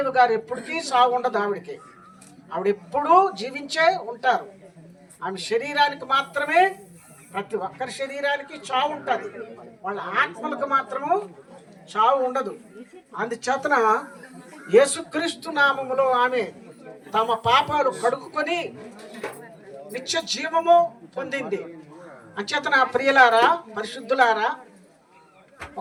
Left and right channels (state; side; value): identical; both; correlation 1.00